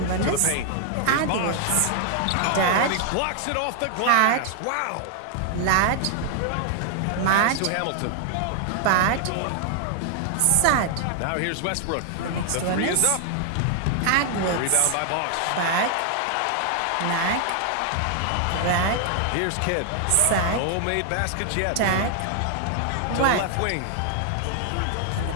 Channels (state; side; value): different; both; correlation 0.00